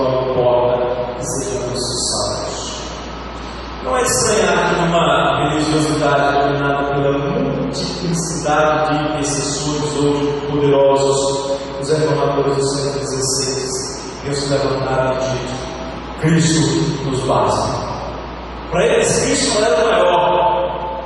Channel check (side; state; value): both; identical; correlation 1.00